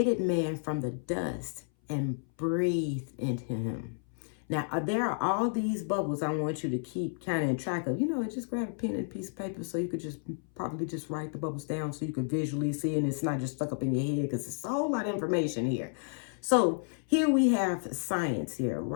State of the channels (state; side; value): silent; right; 57 dB below the other